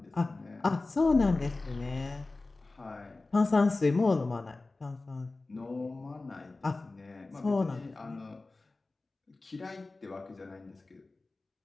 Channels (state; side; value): quieter; right; 3.3 dB